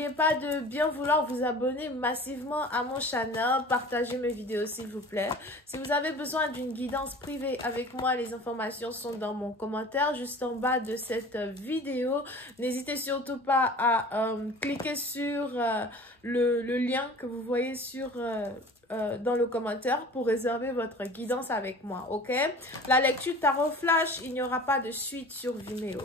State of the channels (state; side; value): normal; both; correlation 0.42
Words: pas de bien vouloir vous abonner massivement à mon channel, partagez mes vidéos s'il vous plaît. Si vous avez besoin d'une guidance privée avec moi, les informations sont dans mon commentaire juste en bas de cette vidéo. N'hésitez surtout pas à cliquer sur le lien que vous voyez dans le commentaire pour réserver votre guidance avec moi, ok? La lecture tarot flash, il n'y aura pas de suite sur Vimeo,